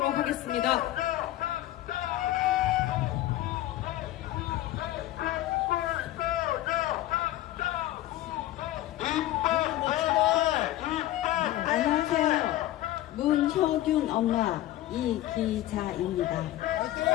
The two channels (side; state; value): right; quieter; 14.7 dB